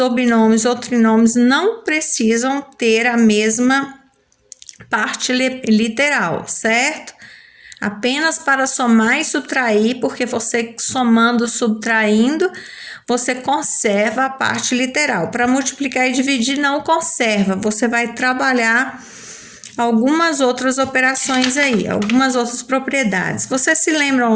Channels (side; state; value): both; identical; correlation 1.00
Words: binômios ou trinômios não precisam ter a mesma parte literal, certo? Apenas para somar e subtrair, porque você somando, subtraindo, você conserva a parte literal. Para multiplicar e dividir, não conserva. Você vai trabalhar algumas outras operações aí, algumas outras propriedades. Vocês se lembram